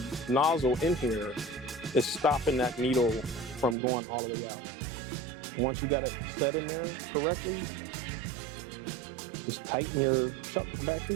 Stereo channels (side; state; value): left; drops out; at 3.8 s